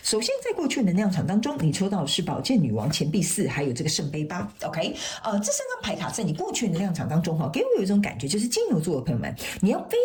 首先，在过去的能量场当中，你抽到的是宝剑女王、钱币4，还有这个圣杯8。OK，这3张牌卡在你过去的能量场当中，给我有一种感觉，就是金牛座的朋友们，你要非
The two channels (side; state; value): both; identical; correlation 1.00